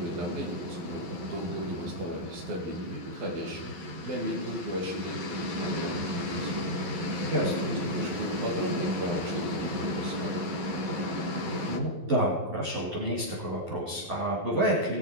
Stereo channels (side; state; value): left; late; 11 ms